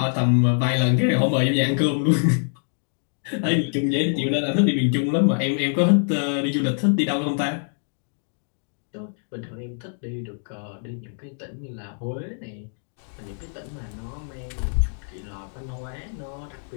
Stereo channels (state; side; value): silent; right; digital silence